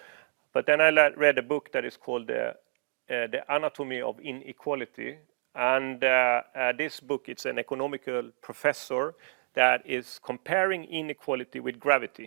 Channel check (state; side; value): silent; left; digital silence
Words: But then I read a book that is called The Anatomy of Inequality. And this book, it's an economical professor that is comparing inequality with